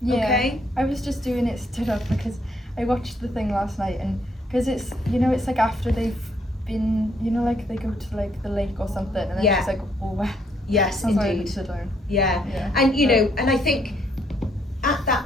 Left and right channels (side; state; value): both; normal; correlation 0.71